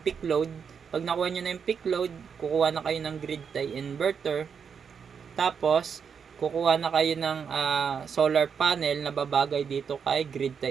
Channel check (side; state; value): left; quieter; 6.7 dB